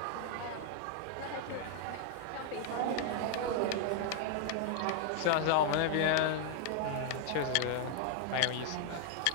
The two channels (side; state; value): both; different; correlation 0.00